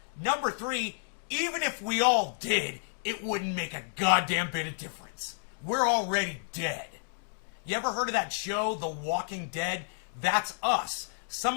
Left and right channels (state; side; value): silent; right; digital silence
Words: Number three, even if we all did, it wouldn't make a goddamn bit of difference. We're already dead. You ever heard of that show, The Walking Dead? That's us. Some